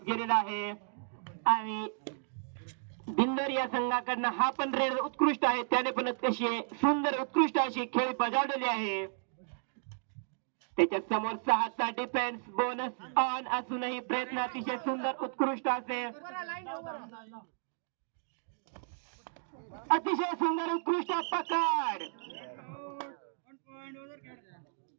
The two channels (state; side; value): silent; left; digital silence